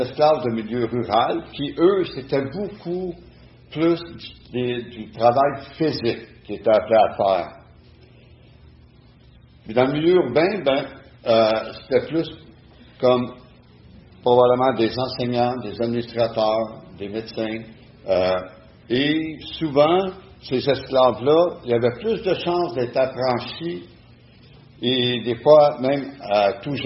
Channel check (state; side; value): identical; both; correlation 1.00